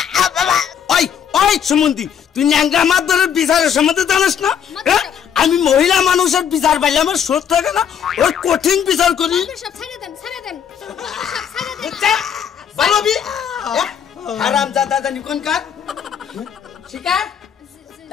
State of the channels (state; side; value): quieter; right; 8.3 dB